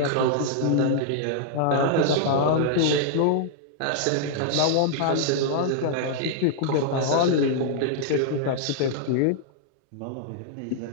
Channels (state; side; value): different; both; correlation -0.01